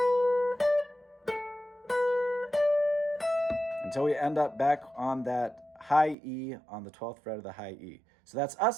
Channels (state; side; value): drops out; left; at 6.2 s